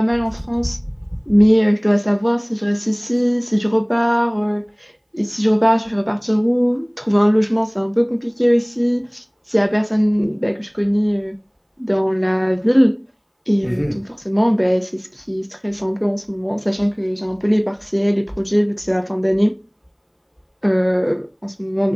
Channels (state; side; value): identical; both; correlation 1.00